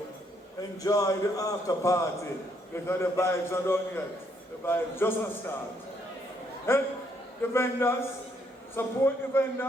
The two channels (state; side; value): normal; both; correlation 0.72